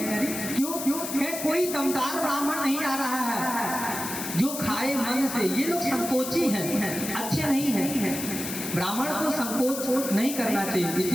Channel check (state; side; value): noise; left; hiss, 6 dB below the sound